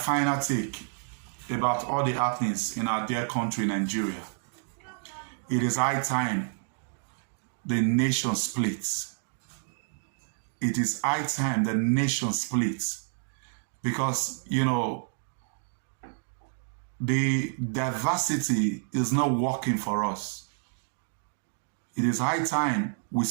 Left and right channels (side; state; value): left; silent; digital silence